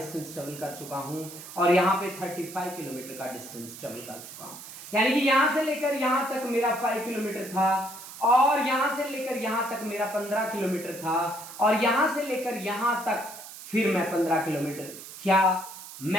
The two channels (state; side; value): noise; right; hiss, 14 dB below the sound